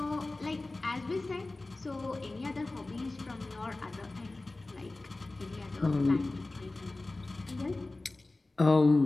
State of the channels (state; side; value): quieter; right; 3.1 dB